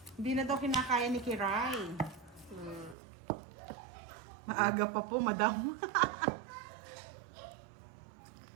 Hindi na daw kinakaya ni Kiray. Maaga pa po, madam.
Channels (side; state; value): left; drops out; at 3.0 s